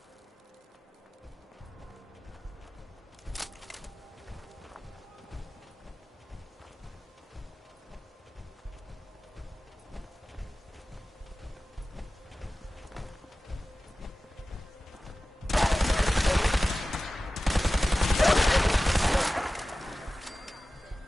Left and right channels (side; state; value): both; normal; correlation 0.96